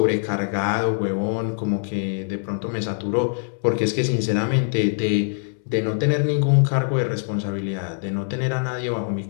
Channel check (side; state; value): right; silent; 63 dB below the other